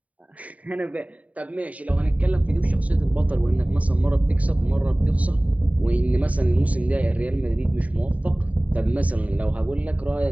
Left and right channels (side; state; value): left; late; 0.069 ms